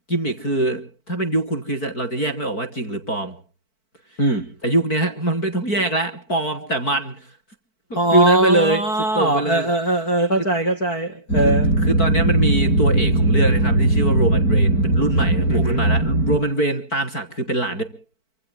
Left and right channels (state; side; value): late; right; 4.5 ms